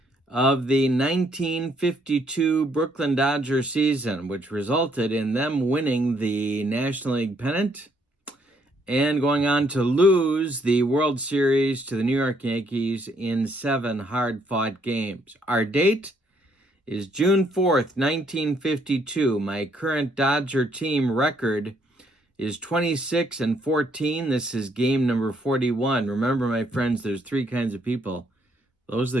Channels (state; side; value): normal; both; correlation 0.70